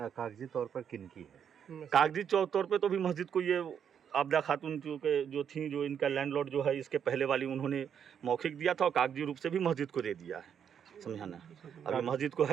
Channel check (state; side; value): quieter; left; 8.1 dB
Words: कागजी तौर पर किन की है? कागजी तौर पे तो भी मस्जिद को ये आबदा खातून जो थी, जो इनका लैंडलॉर्ड जो है, इसके पहले वाली उन्होंने मौखिक दिया था और कागजी रूप से भी मस्जिद को दे दिया है, समझाना। अभी मस्जिद को